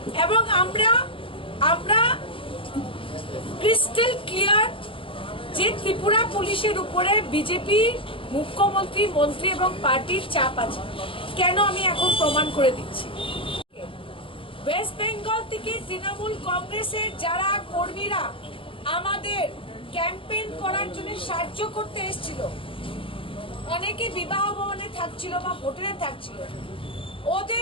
এবং আমরা ক্রিস্টাল ক্লিয়ার যে ত্রিপুরা পুলিশের উপরে বিজেপি মুখ্যমন্ত্রী, মন্ত্রী এবং পার্টির চাপ আছে। কেন আমি এখন প্রমাণ করে দিচ্ছি। ওয়েস্ট বেঙ্গল থেকে তৃণমূল কংগ্রেসের যারা কর্মীরা আমাদের ক্যাম্পেইন করার জন্য সাহায্য করতে এসেছিল, অনেকে বিবাহ ভবনে থাকছিল বা হোটেলে থাকছিল,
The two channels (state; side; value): late; right; 0.26 ms